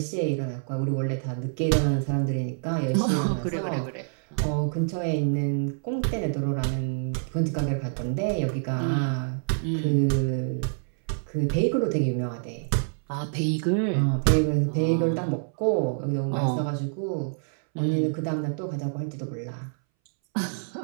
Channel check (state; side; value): silent; left; 60 dB below the other